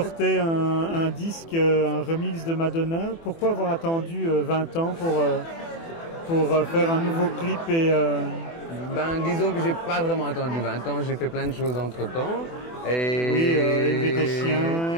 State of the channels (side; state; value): right; late; 24 ms